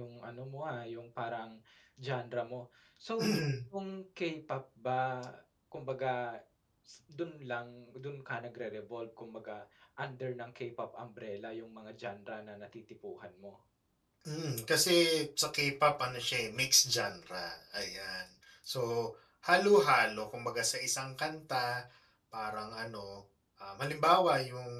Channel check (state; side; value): identical; both; correlation 1.00